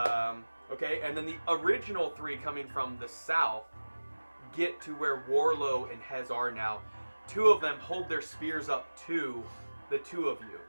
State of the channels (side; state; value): both; inverted; correlation -1.00